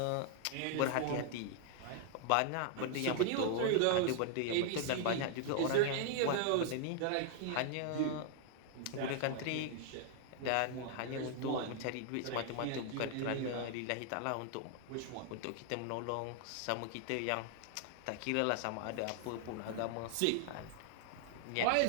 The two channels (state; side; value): different; both; correlation 0.00